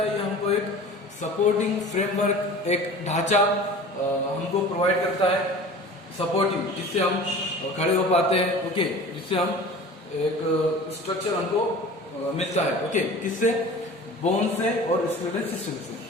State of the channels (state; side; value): normal; both; correlation 0.40